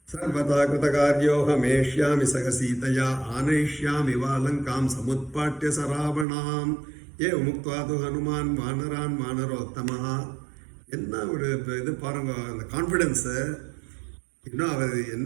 சர்வதா கிருதகார்யோஹமேஷ்யாமி சக சீதையா ஆனயிஷ்யாமி வா லங்காம் சமுத்பாட்ய சராவணாம். ஏ முக்த்வா து ஹனுமான் வானரான் வானரோத்தமஹ என்ன ஒரு இது பாருங்க, அந்த கான்ஃபிடென்ஸு. இன்னும் அவர்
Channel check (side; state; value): left; drops out; at 6.2 s